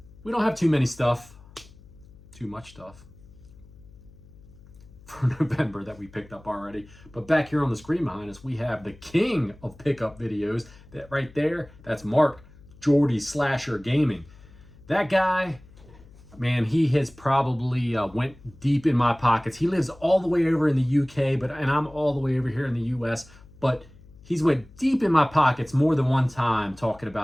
We don't have too much stuff for November that we picked up already. But back here on the screen behind us, we have the king of pickup videos. That right there, that's Mark Jordy Slasher Gaming. That guy, man, he has probably went deep in my pockets. He lives all the way over in the UK, and I'm all the way over here in the US. But he's went deep in my pockets more than one time talking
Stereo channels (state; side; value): noise; left; hum, 23 dB below the sound